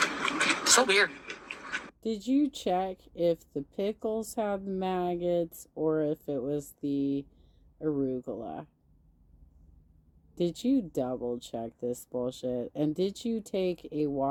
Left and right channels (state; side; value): identical; both; correlation 1.00